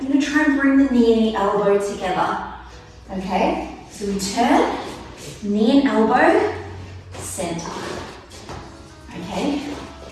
gonna try and bring the knee and the elbow together. Okay, so we turn, knee and elbow, center. Okay,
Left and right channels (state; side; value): identical; both; correlation 1.00